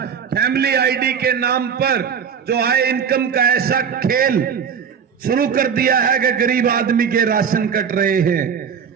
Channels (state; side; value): quieter; left; 7.2 dB